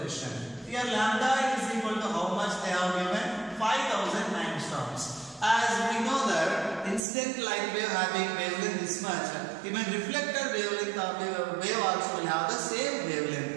Here lambda is equal to how much they have given? 5000 angstroms. As we know that incident light wave having wavelength this much, even reflected wavelength of wave also will have the same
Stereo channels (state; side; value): drops out; left; at 7.0 s